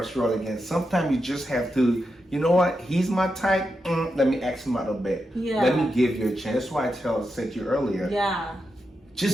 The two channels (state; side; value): normal; both; correlation 0.87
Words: your world again? Sometimes you just have to, you know what, he's my type, let me ask him out a bit. Yeah. Let me give you a chance. That's why I said to you earlier, Yeah.